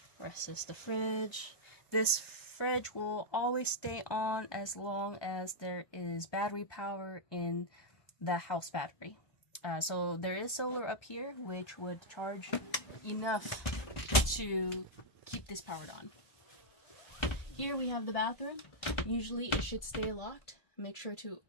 Rest is the fridge. This fridge will always stay on as long as there is battery power in the house battery. So there is solar up here, which would charge enough to keep this powered on. Here we have the bathroom. Usually it should stay locked. Make sure to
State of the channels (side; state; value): right; late; 1.3 ms